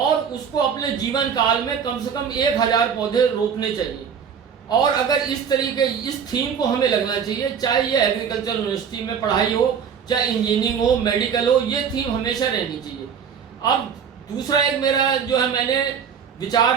उसको अपने जीवन काल में कम से कम 1000 पौधे रोपने चाहिए। और अगर इस तरीके इस थीम को हमें लगना चाहिए, चाहे ये एग्रीकल्चर यूनिवर्सिटी में पढ़ाई हो, चाहे इंजीनियरिंग हो, मेडिकल हो, ये थीम हमेशा रहनी चाहिए। अब दूसरा एक मेरा जो है मैंने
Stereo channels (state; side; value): quieter; left; 7.2 dB